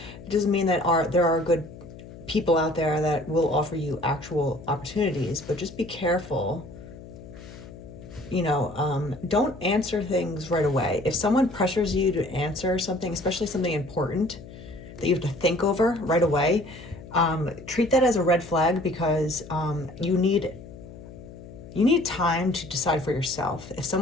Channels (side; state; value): left; noise; hum, 16 dB below the sound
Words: It doesn't mean that there are good people out there that will offer you actual opportunities, but just be careful. Don't answer things right away. If someone pressures you to answer something, especially something important that you have to think over right away, treat that as a red flag, because you need time to decide for yourself. If